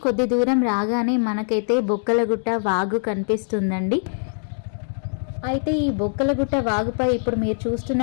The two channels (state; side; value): silent; right; digital silence